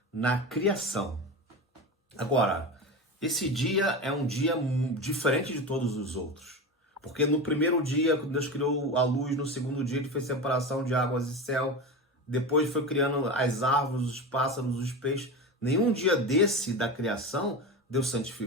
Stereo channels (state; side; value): normal; both; correlation 0.24